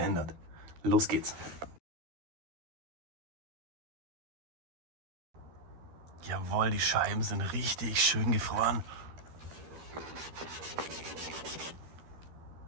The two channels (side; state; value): left; late; 13 ms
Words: Los geht's. Jawohl, die Scheiben sind richtig schön gefroren.